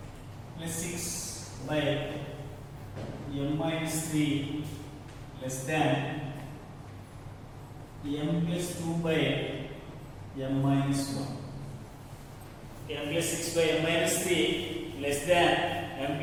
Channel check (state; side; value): identical; both; correlation 1.00